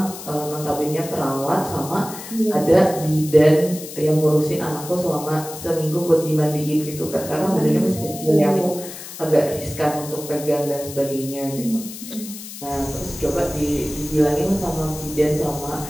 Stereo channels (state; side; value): noise; left; hiss, 12 dB below the sound